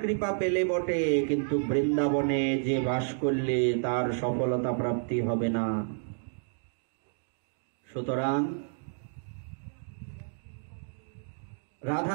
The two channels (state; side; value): silent; left; digital silence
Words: কৃপা পেলে বটে, কিন্তু বৃন্দাবনে যে বাস করলে তার সফলতা প্রাপ্তি হবে না। সুতরাং